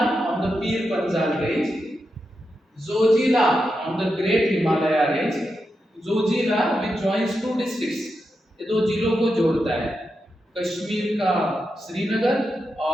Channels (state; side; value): normal; both; correlation 0.87